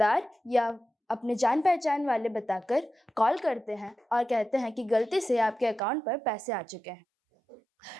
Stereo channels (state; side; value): drops out; left; at 5.8 s